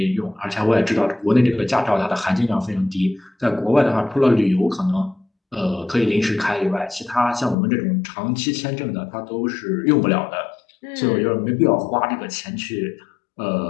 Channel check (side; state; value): right; drops out; at 7.6 s